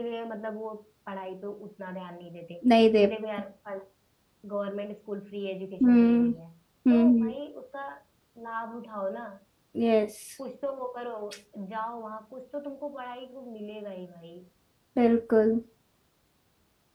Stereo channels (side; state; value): both; identical; correlation 1.00